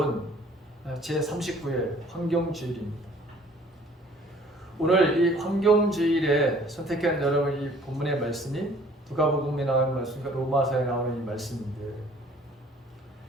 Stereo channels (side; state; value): both; normal; correlation 0.55